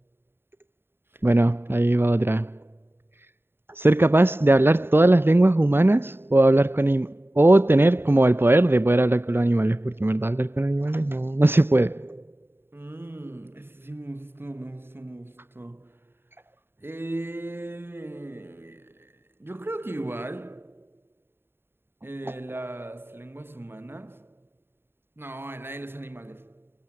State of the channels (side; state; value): left; late; 0.11 ms